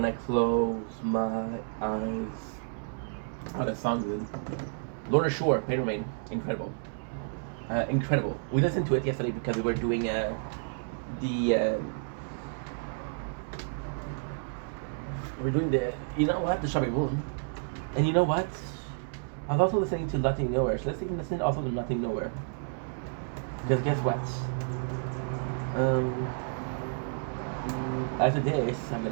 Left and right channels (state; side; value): silent; left; digital silence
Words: I close my eyes? Oh, that song good. Lorna Shore, Pain Remain, incredible. Incredible. We listened to it yesterday because we were doing you know what, the Shabby Moon. And you know what? I was also listening to Nothing Nowhere. So let's listen also to Nothing Nowhere. Because guess what? After this, I'm